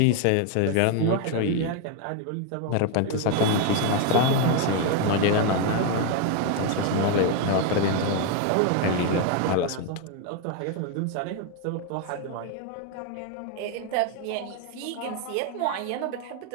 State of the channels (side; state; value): both; different; correlation 0.01